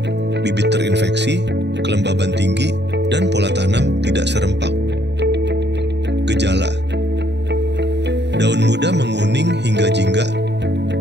bibit terinfeksi, kelembaban tinggi, dan pola tanam tidak serempak. Gejala: daun muda menguning hingga jingga,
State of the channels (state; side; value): late; left; 0.50 ms